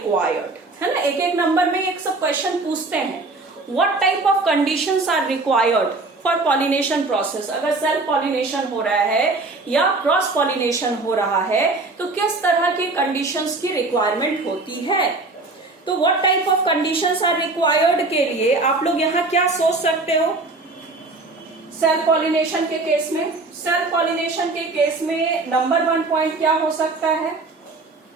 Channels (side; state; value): left; quieter; 3.4 dB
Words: है ना. एक नंबर में एक सब क्वेश्चन पूछते हैं. What type of conditions are required for pollination process. अगर सेल्फ पॉलिनेशन हो रहा है या क्रॉस पॉलिनेशन हो रहा है, तो किस तरह की कंडीशंस की रिक्वायरमेंट होती है. तो what type of conditions are required के लिए आप लोग यहाँ क्या सोच सकते हो सेल्फ पॉलिनेशन के केस में. सेल्फ पॉलिनेशन के केस में नंबर 1 पॉइंट क्या हो सकता है?